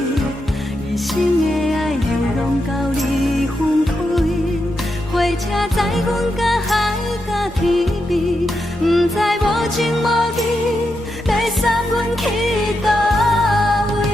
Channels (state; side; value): normal; both; correlation 0.85